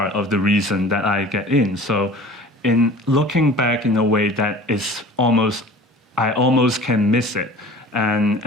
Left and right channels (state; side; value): normal; both; correlation 0.42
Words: of the reason that I get in. So in looking back in a way that I almost can miss it.